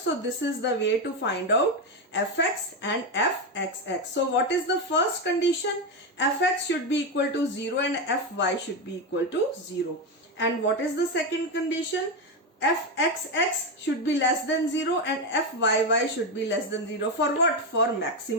this is the way to find out fx and fxx. So what is the first condition? Fx should be equal to 0 and fy should be equal to 0. And what is the second condition? Fxx should be less than 0 and fyy should be less than 0. For what? For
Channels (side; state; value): both; normal; correlation 0.10